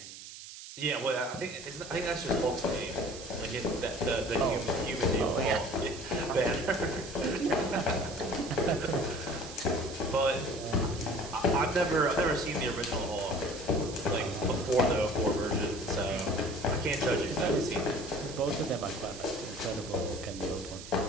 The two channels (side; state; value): right; noise; hiss, 13 dB below the sound